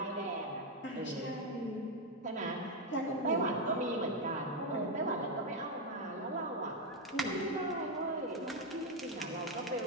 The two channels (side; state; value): both; normal; correlation 0.04